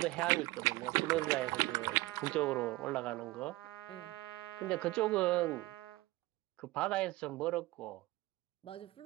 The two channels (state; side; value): quieter; left; 19.6 dB